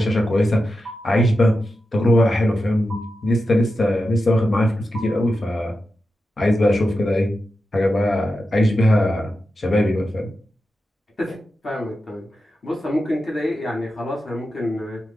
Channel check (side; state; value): both; normal; correlation 0.90